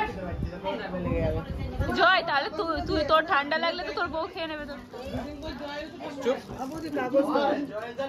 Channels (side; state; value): both; identical; correlation 1.00